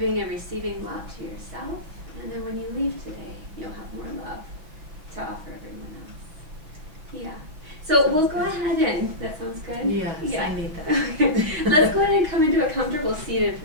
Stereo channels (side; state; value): left; late; 6.3 ms